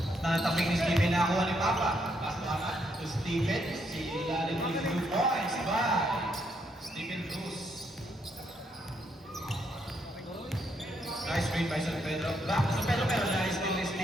Natapik ni Steven na ako ni Papa. Pasaman to Steven. Si Ilalim ni 2 points by Steven Cruz. Nice screen by San Pedro. Back to San Pedro pero nice steal ni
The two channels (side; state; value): both; normal; correlation 0.75